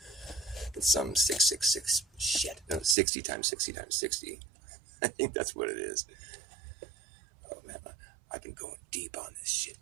It's some 666 shit. No, 60 times 60 times 60. I think that's what it is. Oh man, I've been going deep on this shit,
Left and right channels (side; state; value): left; drops out; at 3.0 s